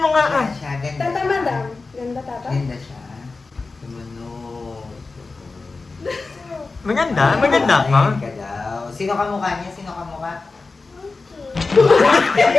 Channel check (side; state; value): right; quieter; 3.9 dB